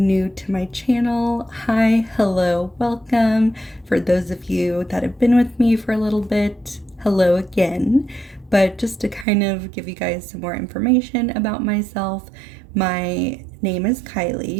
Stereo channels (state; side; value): drops out; left; at 9.2 s